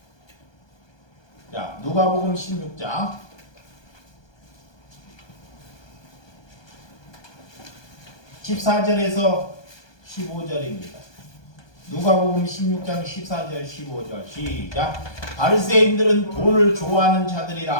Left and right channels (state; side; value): late; right; 1.2 ms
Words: 자, 누가복음 16장. 14절에서 15절입니다. 누가복음 16장 14절 15절 시작. 바리새인들은 돈을 좋아하는